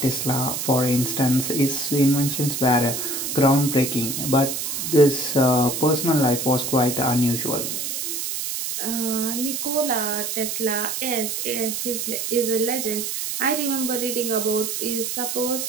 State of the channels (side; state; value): right; noise; hiss, 3 dB below the sound